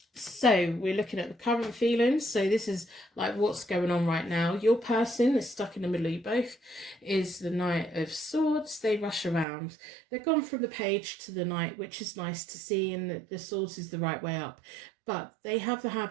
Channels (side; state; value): left; drops out; at 9.5 s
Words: So we're looking at the current feelings. So this is like what's going on right now. Your person that's stuck in the middle of you both is the Knight of Swords. They rush around. They've gone from the Page to the Knight, which is nice to see, and the Swords is the right way up. But they have the